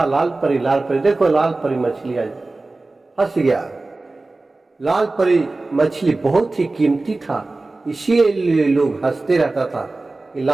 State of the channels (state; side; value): quieter; left; 3.2 dB